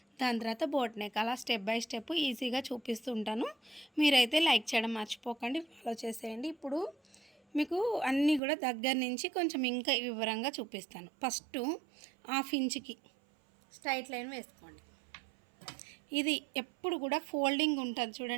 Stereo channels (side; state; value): left; drops out; at 8.4 s